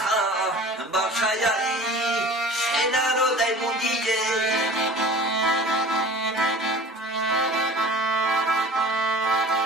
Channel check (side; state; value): both; normal; correlation 0.42